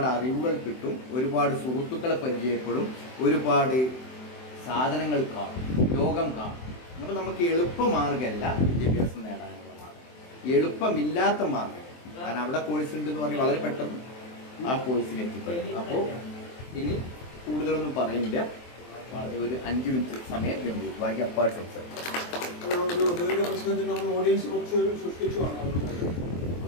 അറിവുകൾ കിട്ടും, ഒരുപാട് സുഹൃത്തുക്കളെ പരിചയപ്പെടും, ഒരുപാട് സാധനങ്ങൾ കാണും, ലോകം കാണും. അപ്പം നമുക്ക് എളുപ്പമാർഗമല്ല വിദ്യാഭ്യാസം നേടാനുള്ള മാർഗം, എളുപ്പമില്ലാത്ത മാർഗം. കാരണം അവിടെ കോഴ്സ് ഉണ്ട് എന്ന് പറഞ്ഞ് വളരെ പെട്ടെന്ന് ആ കോഴ്സിന് എത്തിപ്പെടും. അപ്പോൾ ഇനി കൂടുതലൊന്നും പറയുന്നില്ല, ഒരു 5 മിനിറ്റ് സമയം വേണ്ടി ബാക്കി അപ്പാട് സംസാരിക്കും. പ്രശ്നത്തിൽ നമ്മൾ ഓഡിയൻസ് കുറച്ച് സൃഷ്ടിച്ചുമാണ്.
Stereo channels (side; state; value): right; late; 23 ms